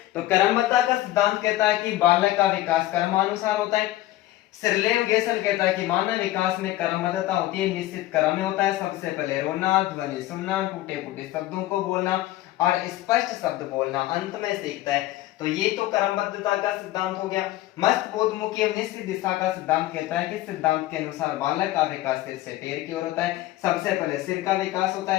तो क्रमबद्धता का सिद्धांत कहता है कि बालक का विकास क्रमानुसार होता है। सिरलेव गेसल कहता है कि मानव विकास में क्रमबद्धता होती है, निश्चित क्रम में होता है। सबसे पहले रोना, ध्वनि सुनना, टूटे फूटे शब्दों को बोलना और स्पष्ट शब्द बोलना, अंत में सीखता है। तो ये तो क्रमबद्धता का सिद्धांत हो गया। मस्तबोधमुखी एवं निश्चित दिशा का सिद्धांत कहता है कि सिद्धांत के अनुसार बालक का विकास सिर से पैर की ओर होता है। सबसे पहले सिर का विकास होता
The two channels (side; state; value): right; quieter; 15.8 dB